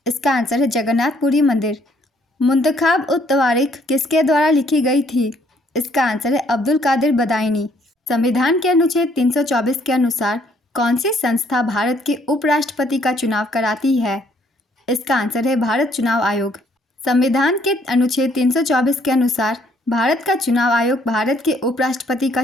इसका आंसर है जगन्नाथपुरी मंदिर। मुंतखाब उत तवारीख किसके द्वारा लिखी गई थी? इसका आंसर है अब्दुल कादिर बदायूनी। संविधान के अनुच्छेद 324 के अनुसार कौन सी संस्था भारत के उपराष्ट्रपति का चुनाव कराती है? इसका आंसर है भारत चुनाव आयोग। संविधान के अनुच्छेद 324 के अनुसार भारत का चुनाव आयोग भारत के उपराष्ट्रपति का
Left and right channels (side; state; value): both; normal; correlation 0.66